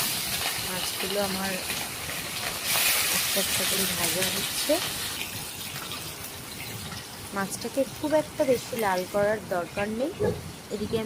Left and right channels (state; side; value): identical; both; correlation 1.00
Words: মাছগুলো আমার একটা একটা করে ভাজা হচ্ছে। মাছটাকে খুব একটা বেশি লাল করার দরকার নেই। এদিকে